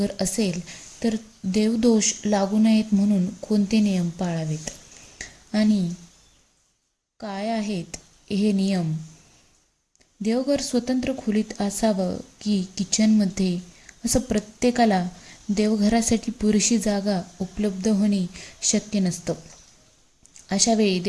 असेल तर देवदोष लागू नयेत म्हणून कोणते नियम पाळावेत आणि काय आहेत हे नियम? देवघर स्वतंत्र खोलीत असावं की किचनमध्ये, असं प्रत्येकाला देवघरासाठी पुरेशी जागा उपलब्ध होणे शक्य नसतं. अशा वेळी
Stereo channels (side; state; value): both; identical; correlation 1.00